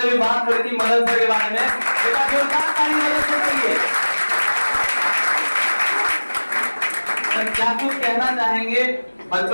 भी बात करी थी मदन सर के बारे में। एक बार जोरदार ताली मदन सर के लिए। सर क्या कुछ कहना चाहेंगे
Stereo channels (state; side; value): inverted; both; correlation -1.00